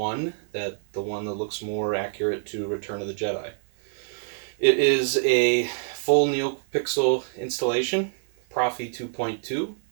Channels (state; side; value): silent; left; 61 dB below the other